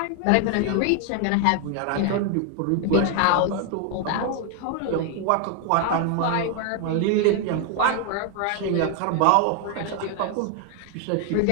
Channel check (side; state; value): both; different; correlation 0.00